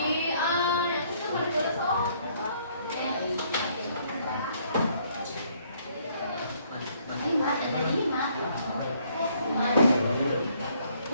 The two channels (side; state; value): both; inverted; correlation -0.66